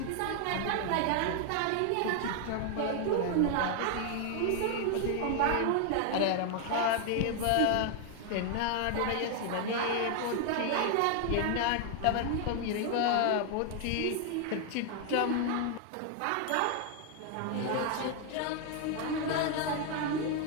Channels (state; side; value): different; both; correlation 0.00